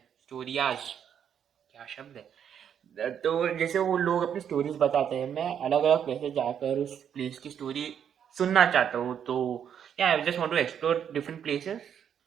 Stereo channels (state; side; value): quieter; left; 8.6 dB